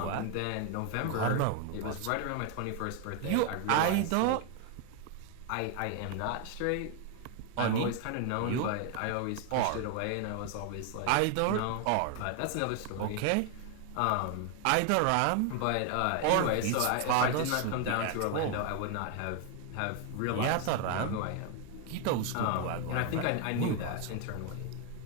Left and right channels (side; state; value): both; different; correlation 0.01